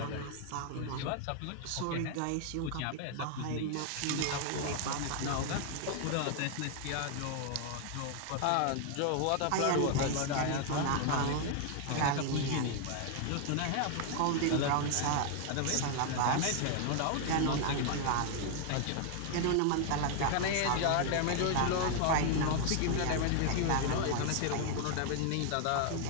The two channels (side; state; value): both; different; correlation 0.00